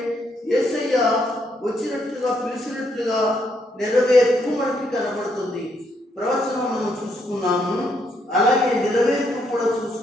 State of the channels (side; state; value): both; normal; correlation 0.74